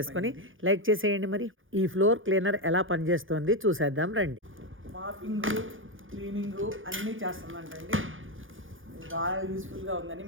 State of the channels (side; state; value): left; late; 0.58 ms